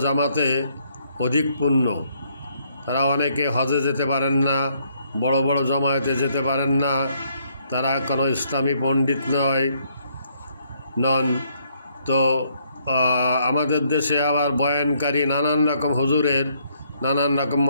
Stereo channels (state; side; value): inverted; both; correlation -0.69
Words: জামাতে অধিক পুণ্য। তারা অনেকে হজে যেতে পারেন না, বড় বড় জমায়েতে যেতে পারেন না, তারা কোনো ইসলামী পণ্ডিত নন। তো আমাদের দেশে আবার বয়ানকারী নানান রকম হুজুরের নানান রকম